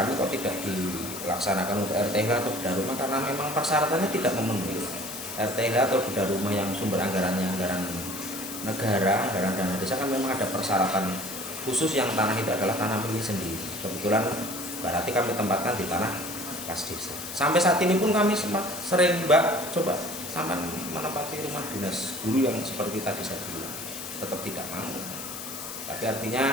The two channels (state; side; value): noise; left; hiss, 9 dB below the sound